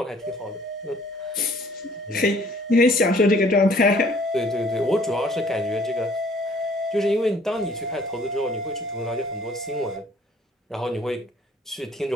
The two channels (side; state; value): both; normal; correlation 0.57